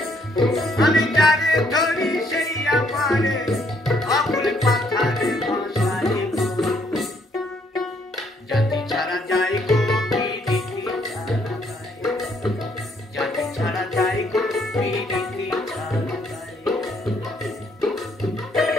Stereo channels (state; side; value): normal; both; correlation 0.68